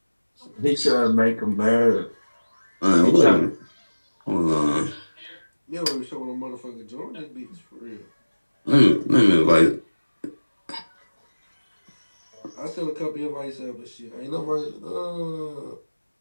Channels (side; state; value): both; inverted; correlation -1.00